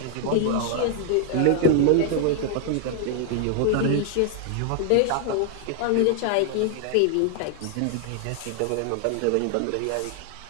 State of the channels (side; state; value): both; different; correlation 0.00